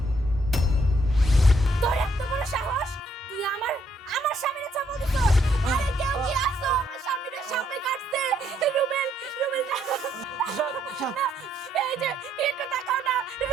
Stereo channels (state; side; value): normal; both; correlation 0.71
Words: তোর এত বড় সাহস, তুই আমার স্বামীর চাপা দিছস। আরে কেউ কি আসো, আমার স্বামীর সামনে কাটছে। রুবেল, না, এই যে একটু তাকাও না